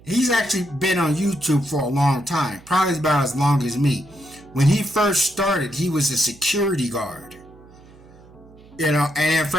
he's actually been on YouTube for a long time, probably about as long as me. When he first started, he was a security guard. You know, and then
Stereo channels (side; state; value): right; noise; hum, 24 dB below the sound